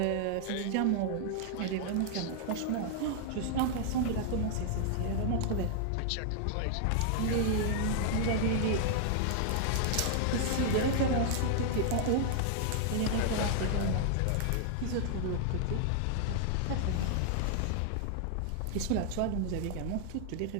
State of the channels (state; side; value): different; both; correlation 0.00